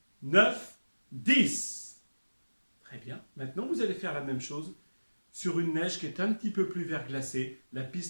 9, 10. Très bien. Maintenant, vous allez faire la même chose sur une neige qui est un petit peu plus verglacée. La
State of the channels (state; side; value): inverted; both; correlation -1.00